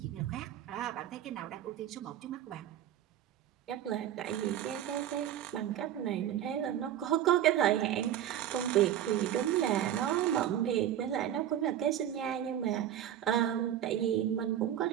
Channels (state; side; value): quieter; left; 11.2 dB